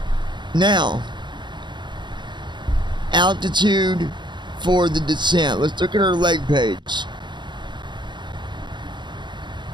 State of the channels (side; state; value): left; late; 0.22 ms